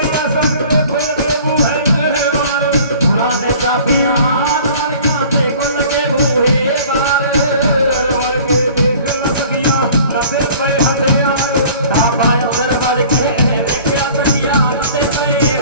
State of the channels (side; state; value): both; inverted; correlation -0.48